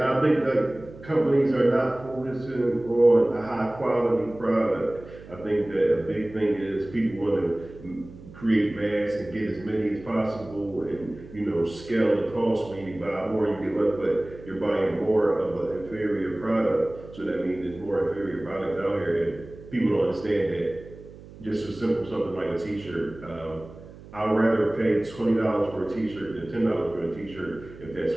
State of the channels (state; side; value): noise; right; hum, 18 dB below the sound